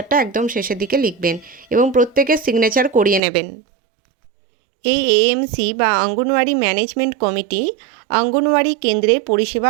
একদম শেষের দিকে লিখবেন এবং প্রত্যেকের সিগনেচার করিয়ে নেবেন। এই এএমসি বা অঙ্গনওয়াড়ি ম্যানেজমেন্ট কমিটি অঙ্গনওয়াড়ি কেন্দ্রের পরিষেবা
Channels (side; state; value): left; drops out; at 3.2 s